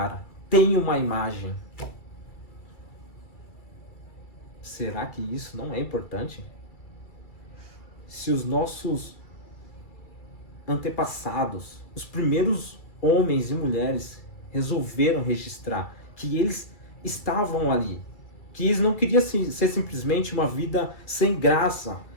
têm uma imagem. Será que isso não é importante? Se os nossos antepassados, os primeiros homens e mulheres resolveram registrar que eles estavam ali, que eles não queriam ser simplesmente uma vida sem graça,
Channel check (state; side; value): late; right; 2.3 ms